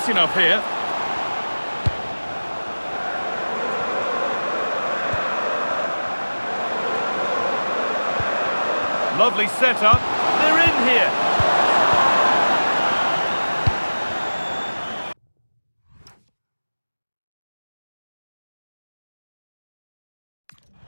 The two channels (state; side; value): inverted; both; correlation -1.00